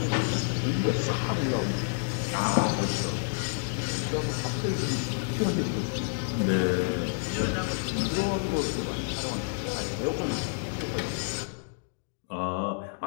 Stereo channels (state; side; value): silent; right; digital silence